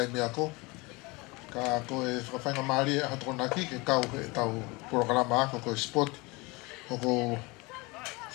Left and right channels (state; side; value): quieter; right; 25.1 dB